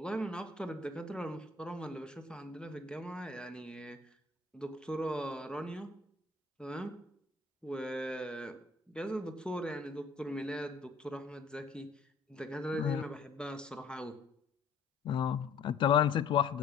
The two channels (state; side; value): quieter; right; 4.5 dB